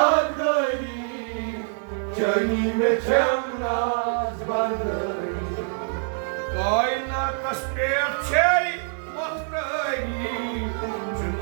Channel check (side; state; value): left; silent; digital silence